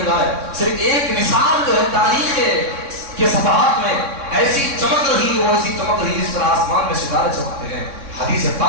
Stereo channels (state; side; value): late; left; 3.6 ms